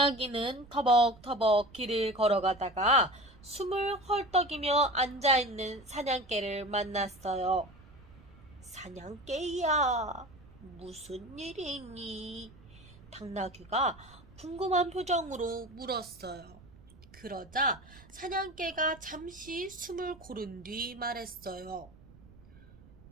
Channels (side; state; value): right; noise; rumble, 22 dB below the sound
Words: 터벅터벅 길을 걸어가다가 숨을 헐떡이며 앉아있는 사냥개를 만났어요. 사냥개야, 무슨 일이 있니? 당나귀가 궁금한 표정으로 물었어요. 그러자 사냥개가 잠시 숨을 고른 뒤 말했어요.